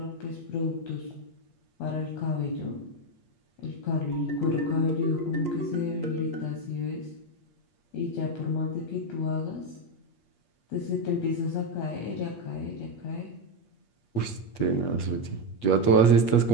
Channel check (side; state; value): right; late; 8.4 ms